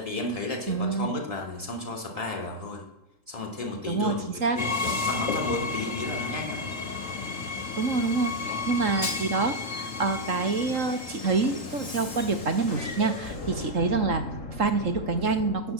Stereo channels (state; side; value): late; left; 3.7 ms